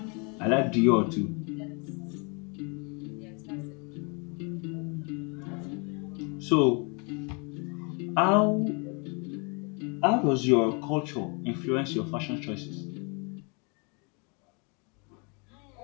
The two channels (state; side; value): quieter; right; 33.6 dB